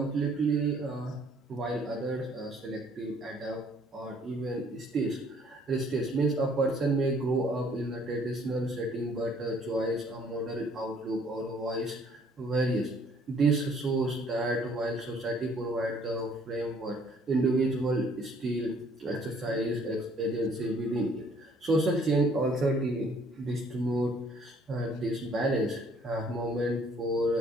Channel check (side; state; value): both; normal; correlation 0.61